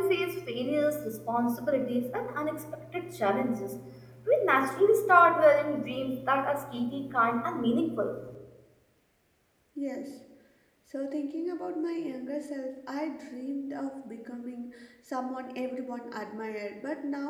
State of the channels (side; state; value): both; identical; correlation 1.00